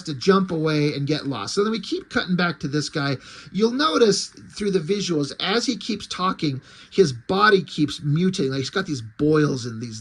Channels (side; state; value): both; identical; correlation 1.00